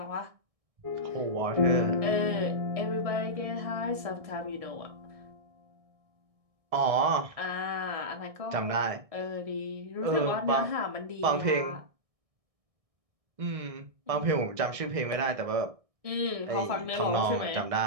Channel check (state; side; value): late; left; 1.6 ms